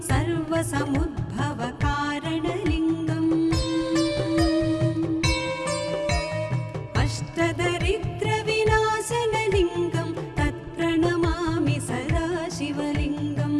सर्वसमुद्भवकारणलिङ्गम् अष्टदरिद्रविनाशनलिङ्गं तत्प्रणमामि सदा शिवलिङ्गम्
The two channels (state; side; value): identical; both; correlation 1.00